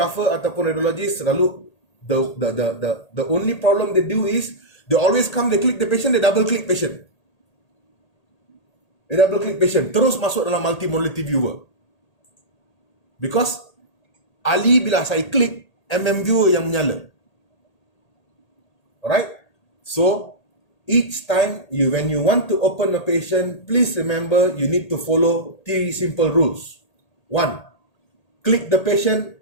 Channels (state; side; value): late; right; 1.8 ms